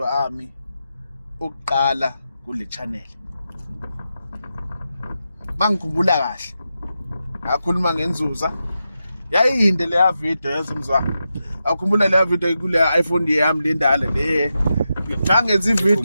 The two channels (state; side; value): inverted; both; correlation -0.88